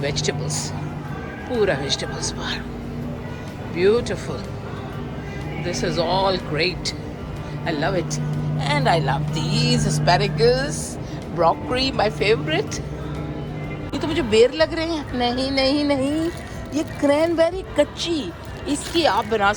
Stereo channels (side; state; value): both; identical; correlation 1.00